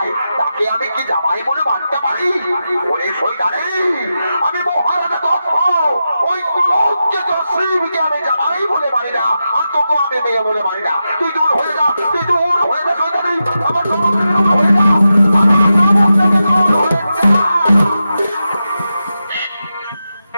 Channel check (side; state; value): both; inverted; correlation -0.90